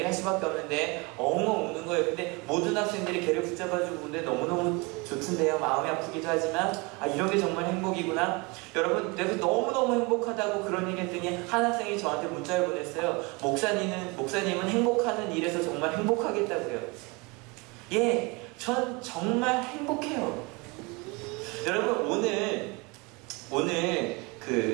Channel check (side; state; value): left; quieter; 27.5 dB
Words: 할 수밖에 없는데 엉엉 우는 거예요. 근데 모든 학생들이 걔를 붙잡아주고 우는데 너무너무 좋던데요. 마음이 아프기도 하지만 이런 게 정말 행복이구나. 여러분, 내가 너무너무 행복하다고 그런 얘기 했더니 한 학생이 저한테 문자를 보냈어요. 목사님은 행복하는 일에서 정말 행복하겠다고요. 예, 전 정말 행복해요. 여러분, 오늘